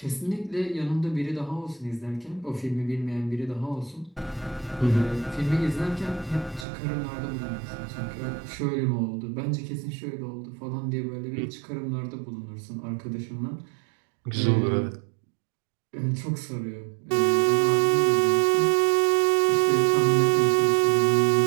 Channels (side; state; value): left; drops out; at 6.7 s